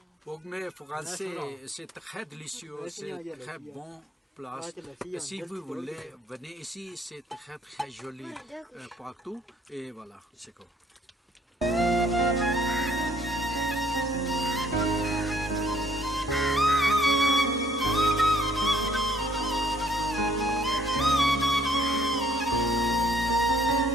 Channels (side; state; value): both; normal; correlation 0.62